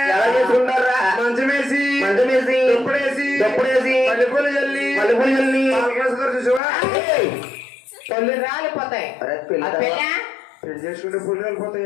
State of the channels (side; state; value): right; drops out; at 6.6 s